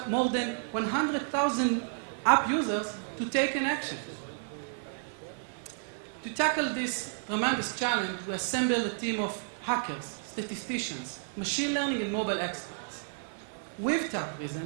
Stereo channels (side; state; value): left; silent; 57 dB below the other